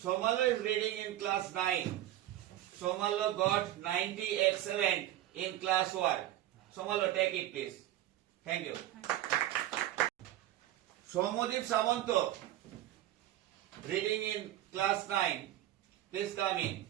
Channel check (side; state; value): left; quieter; 13.7 dB